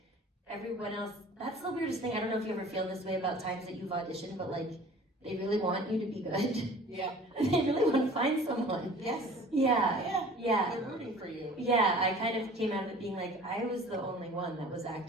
everyone else, that's the weirdest thing. I don't know if you ever feel this way about times that you've auditioned, but like they really want you to be good. Yeah. They really want to find someone. Yes. Yeah. They're rooting for you. Yeah, I kind of came out of it being like, I was the only one that was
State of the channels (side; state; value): both; normal; correlation 0.46